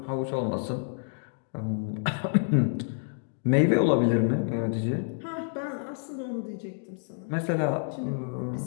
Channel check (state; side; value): silent; right; digital silence